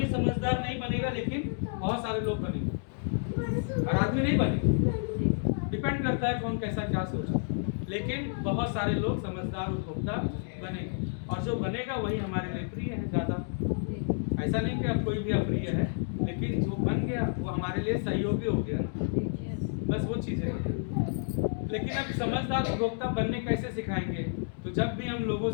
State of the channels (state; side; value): silent; right; digital silence